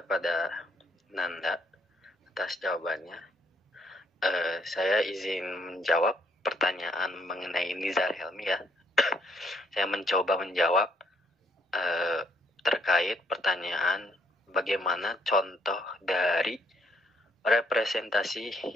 Nanda atas jawabannya. Saya izin menjawab pertanyaan mengenai Nizar Helmi ya. Saya mencoba menjawab terkait pertanyaan bagaimana contoh dari representasi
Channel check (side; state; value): both; normal; correlation 0.69